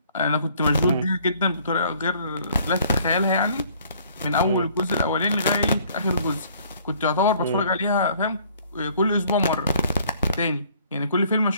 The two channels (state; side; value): inverted; both; correlation -0.59